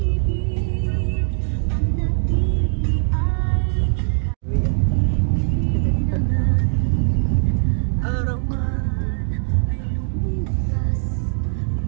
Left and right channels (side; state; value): left; silent; 65 dB below the other